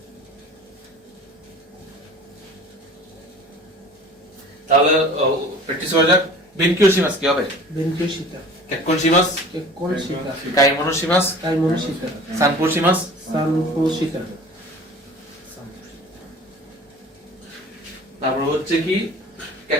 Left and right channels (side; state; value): both; normal; correlation 0.44